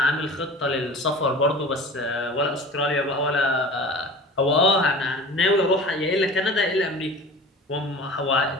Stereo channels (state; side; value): normal; both; correlation 0.38